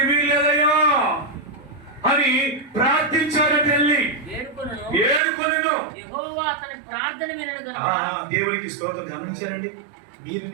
వీల్లేదయ్యా అని ప్రార్థించారని వెళ్ళి ఏడుకొనెను. దేవునికి స్తోత్రం. గమనించారండి మీరు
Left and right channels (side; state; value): left; drops out; at 5.2 s